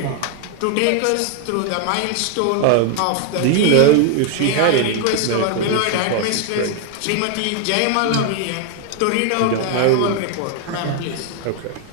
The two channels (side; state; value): both; different; correlation 0.01